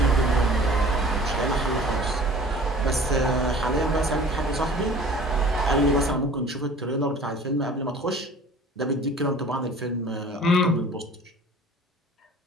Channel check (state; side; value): normal; both; correlation 0.46